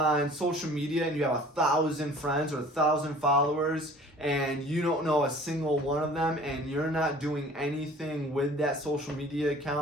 social media and you have 1,000 friends or 1,000 followers and you don't know a single one of them, and you're not doing anything with that social media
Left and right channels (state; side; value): normal; both; correlation 0.48